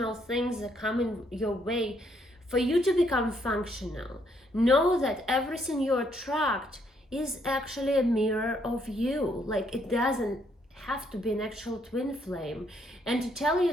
things that come in your way, for you to become functional, know that everything you attract is actually a mirror of you. Like it doesn't have to be an actual twin flame. And to tell you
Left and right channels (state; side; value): normal; both; correlation 0.71